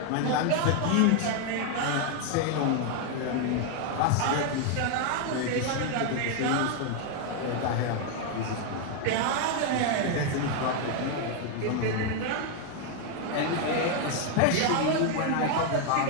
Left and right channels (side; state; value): both; different; correlation 0.01